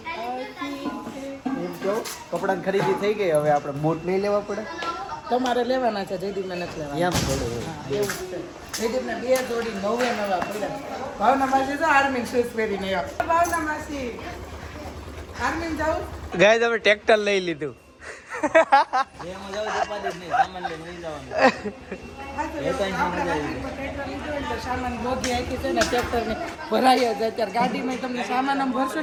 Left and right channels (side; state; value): both; identical; correlation 1.00